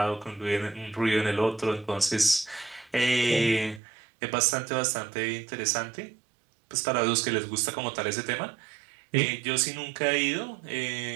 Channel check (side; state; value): left; drops out; at 3.8 s